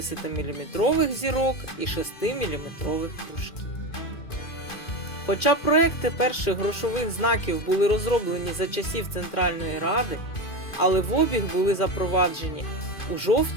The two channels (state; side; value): late; right; 2.5 ms